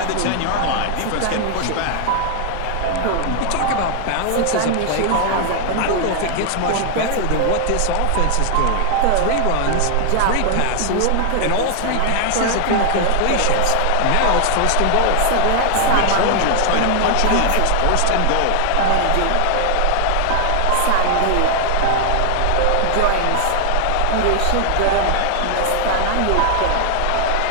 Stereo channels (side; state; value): both; different; correlation 0.00